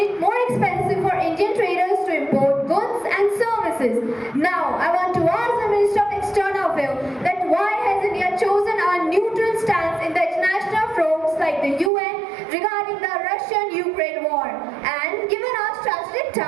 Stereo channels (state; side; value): drops out; left; at 11.9 s